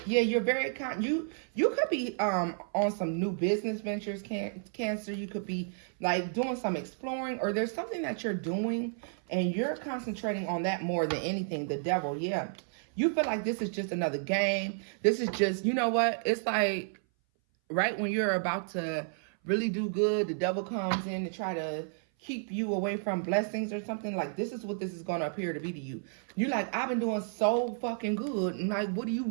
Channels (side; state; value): left; silent; 57 dB below the other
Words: Yeah, you're very you could be on some new business ventures, Cancer. You could be like doing some exploring, or there's something that you're doing and you're concentrating on that more than anything. The Devil, yeah. You feel like this is just another game. This is just, you know what? It's like right when you're about to really do good, the devil comes in to try to keep you away from blessings or something. Like, this is what this is going to appear to be to you. You're like, I've been doing so fucking good. And like, what do you